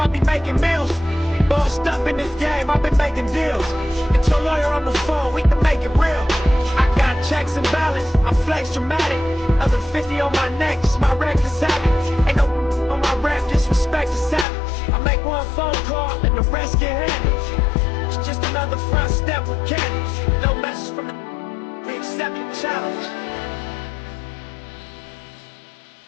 be making meals. Bossed up in this game, I've been making deals. Get your lawyer on the phone, we can make it real. I got checks and balance, I flex dramatic. Other 50 on my neck, it's my reckless habit. Ain't no on my rap, disrespect is savage. I make one phone call and the rest get handled. It's just another front step with candy. No message from the we accept the challenge.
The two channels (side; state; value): right; drops out; at 14.5 s